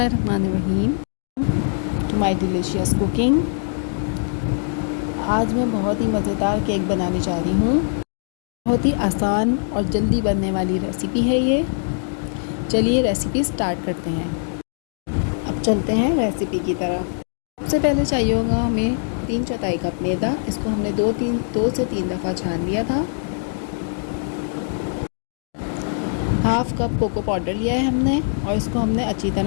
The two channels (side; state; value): right; silent; digital silence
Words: टू माई डिलीशियस कुकिंग। आज मैं बहुत ही मज़ेदार केक बनाने जा रही हूँ। बहुत ही आसान और जल्दी बनने वाली रेसिपी है ये। चलिए रेसिपी स्टार्ट करते हैं। अब चलते हैं रेसिपी की तरफ। सबसे पहले चाहिए होगा हमें 3/4 कप मैदा। इसको हमने 2 से 3 दफ़ा छान लिया था। हाफ़ कप कोको पाउडर लिया है हमने और इसको हमने अच्छी